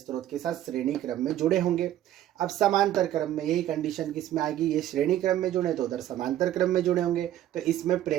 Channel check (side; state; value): left; quieter; 12.5 dB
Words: के साथ श्रेणी क्रम में जुड़े होंगे। अब समांतर क्रम में यही कंडीशन किसमें आएगी, ये श्रेणी क्रम में जुड़े तो उधर समांतर क्रम में जुड़े होंगे, तो इसमें